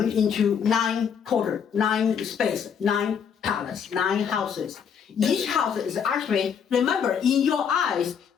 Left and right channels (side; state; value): right; quieter; 7.3 dB